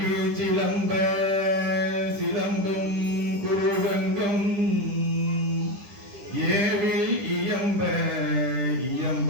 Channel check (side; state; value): left; late; 10 ms